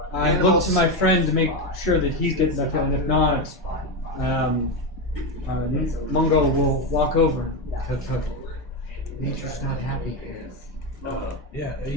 I look to my friend to make sure that he's getting that feeling. If not, Mungo will walk over. Nature's not happy here. Yeah, are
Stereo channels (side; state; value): both; normal; correlation 0.12